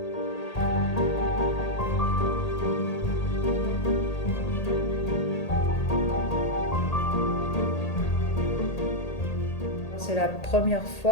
C'est la première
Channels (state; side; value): late; right; 1.8 ms